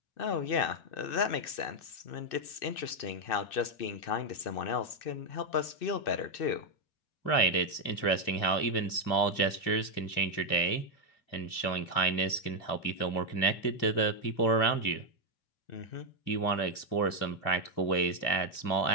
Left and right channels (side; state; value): right; late; 2.5 ms